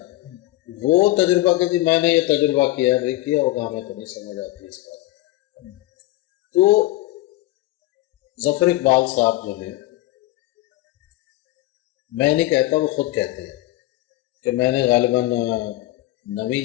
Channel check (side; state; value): right; quieter; 17.4 dB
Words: وہ تجربہ کہ جی میں نے یہ تجربہ کیا، بھائی کیا ہوگا، ہمیں تو نہیں سمجھ آتی اس بات. تو ظفر اقبال صاحب جو ہیں، میں نہیں کہتا، وہ خود کہتے ہیں کہ میں نے غالباً 9ویں